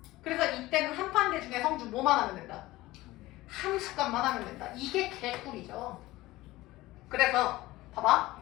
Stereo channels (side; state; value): right; quieter; 18.2 dB